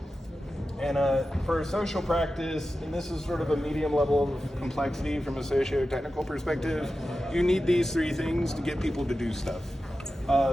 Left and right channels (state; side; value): normal; both; correlation 0.93